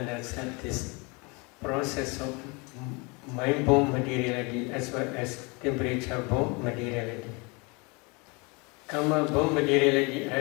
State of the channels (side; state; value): right; quieter; 29.0 dB